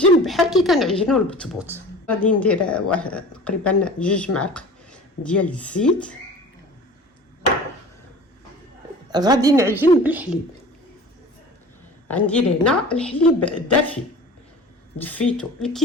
بحال كي كنعجنو البطبوط. غادي ندير تقريبا 2 معالق ديال الزيت. غادي نعجن بالحليب. غندير هنا الحليب دافي، دفيتو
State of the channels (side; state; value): both; normal; correlation 0.40